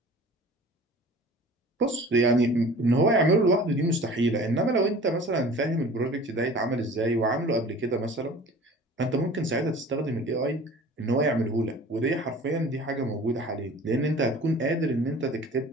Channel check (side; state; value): both; normal; correlation 0.44